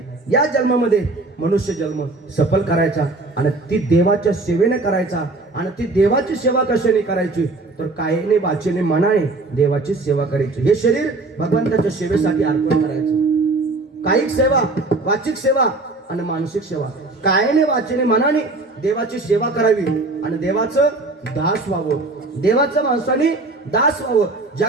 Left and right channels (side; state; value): left; quieter; 3.2 dB